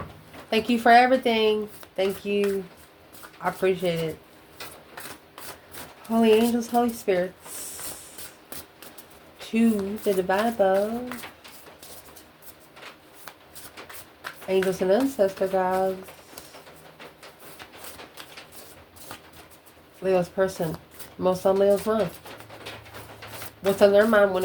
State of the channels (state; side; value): identical; both; correlation 1.00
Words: Thank you for everything. Thank you. I appreciate it. Holy angels, Holy spirits. To the divine above. Angels and ancestor gods. Leo's person. Most on Leo's mind. What's on their mind when